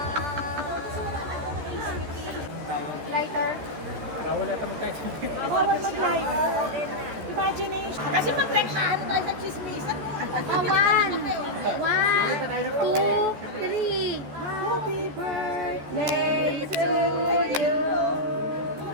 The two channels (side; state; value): left; late; 14 ms